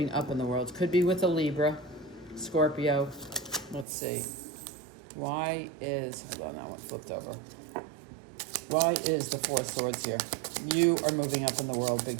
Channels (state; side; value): drops out; left; at 3.9 s